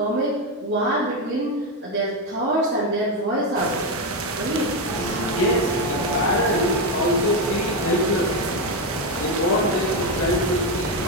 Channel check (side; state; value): both; normal; correlation 0.08